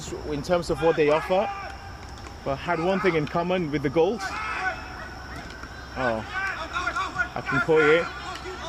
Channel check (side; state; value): both; identical; correlation 1.00